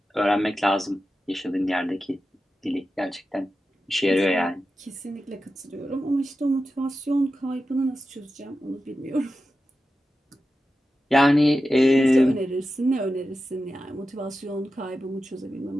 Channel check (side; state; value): both; normal; correlation 0.92